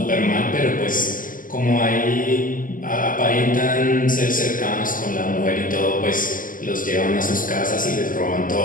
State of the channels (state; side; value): late; right; 0.39 ms